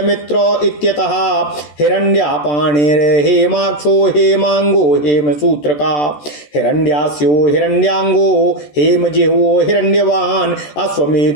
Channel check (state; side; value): late; right; 14 ms